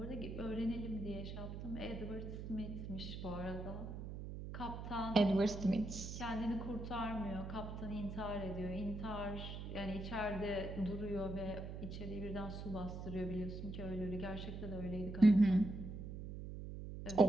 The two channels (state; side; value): noise; right; hum, 7 dB below the sound